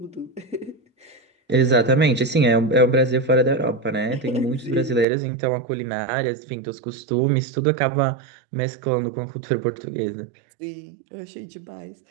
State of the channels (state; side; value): drops out; left; at 5.1 s